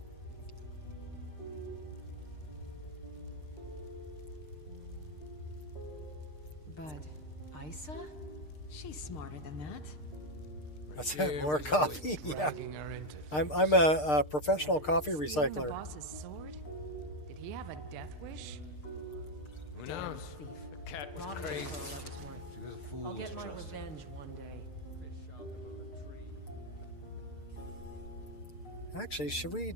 Bud, Isa? She's smarter than that. That's Here it, more was always coffee. Yeah. dragging her into I'm a professional coffee Stealing the recycler. boss's sword? Did he have a death wish? Who Damn knows? thief. The cat was Robbed me crazy. for all I was worth. She was a fool I'll to get my trust. revenge one day. Fish out of a latrine. Actually, should we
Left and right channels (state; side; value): late; right; 6.6 ms